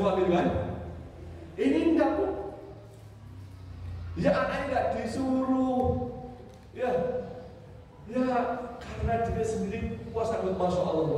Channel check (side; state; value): both; identical; correlation 1.00